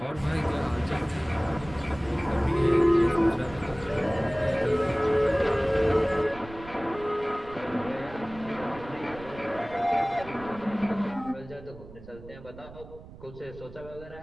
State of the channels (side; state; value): right; noise; rumble, 17 dB below the sound